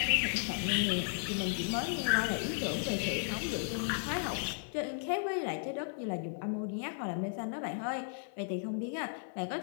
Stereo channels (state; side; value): silent; right; 55 dB below the other